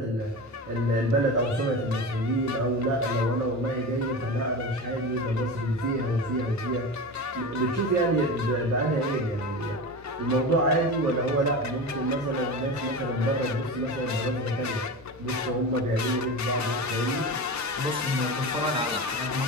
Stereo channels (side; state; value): both; normal; correlation 0.26